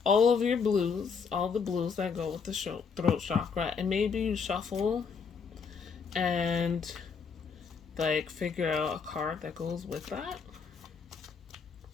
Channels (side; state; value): right; quieter; 5.8 dB